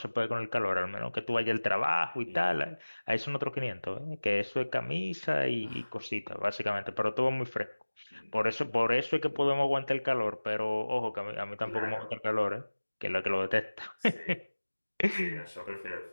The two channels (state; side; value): inverted; both; correlation -1.00